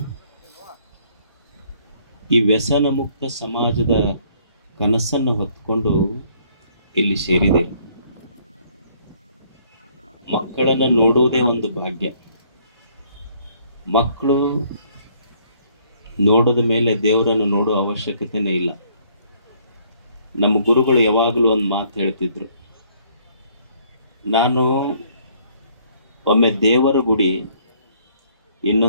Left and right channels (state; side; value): inverted; both; correlation -0.63